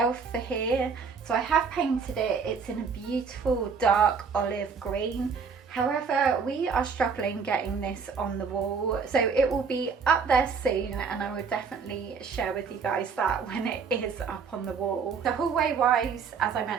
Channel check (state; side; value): quieter; left; 5.6 dB